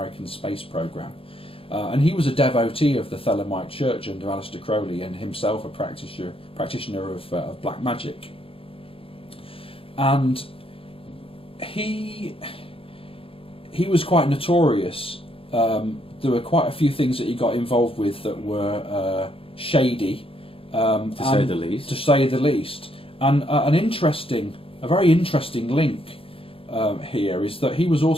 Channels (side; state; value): right; late; 0.27 ms